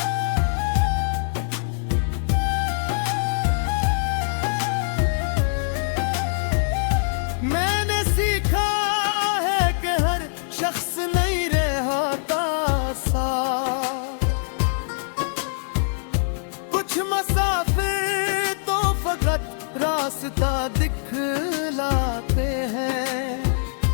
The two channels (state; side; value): silent; right; 63 dB below the other